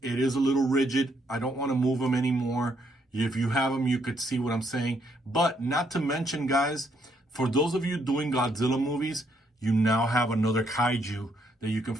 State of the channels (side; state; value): both; normal; correlation 0.73